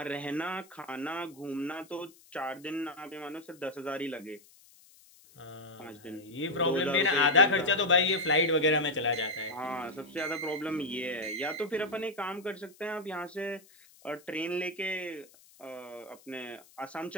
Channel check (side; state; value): left; noise; hiss, 26 dB below the sound